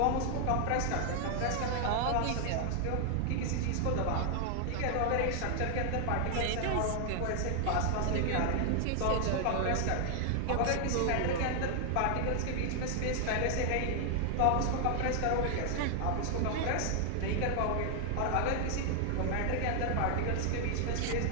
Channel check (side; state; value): both; different; correlation 0.00